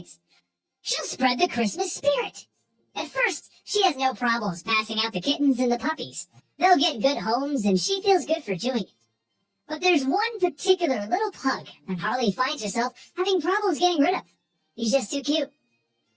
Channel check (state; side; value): identical; both; correlation 1.00